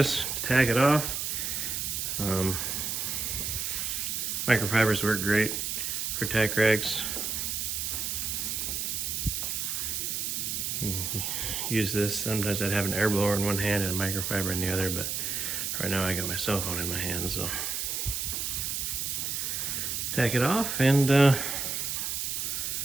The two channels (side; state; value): right; noise; hiss, 1 dB below the sound